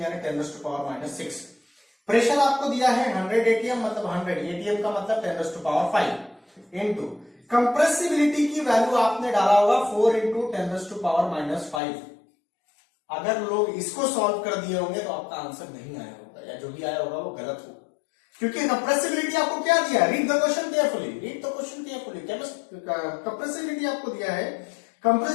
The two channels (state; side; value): drops out; right; at 11.8 s